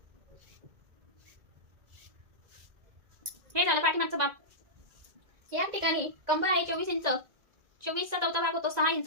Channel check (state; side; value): late; left; 1.9 ms